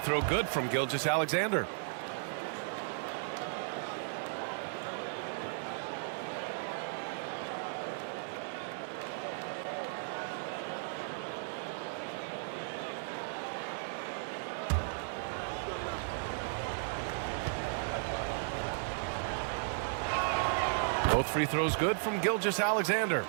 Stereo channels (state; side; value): silent; left; digital silence